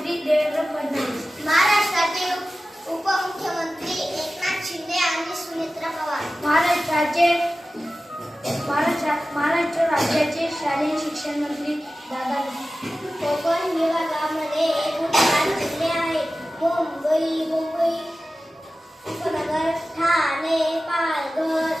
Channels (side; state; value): both; normal; correlation 0.95